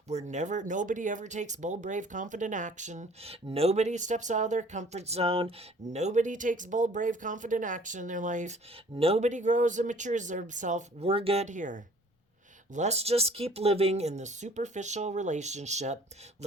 where nobody ever takes bold, brave, confident action. Nobody steps out of their comfort zone. Nobody takes bold, brave, confident action in their life. Nobody grows and matures themselves. We're good here. Let's just keep living in the superficial relationship.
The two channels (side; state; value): both; normal; correlation 0.53